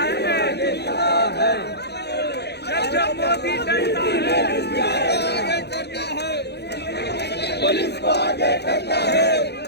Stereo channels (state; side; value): late; right; 0.48 ms